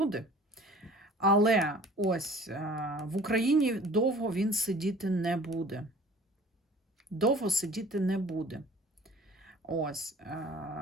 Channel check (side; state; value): both; normal; correlation 0.48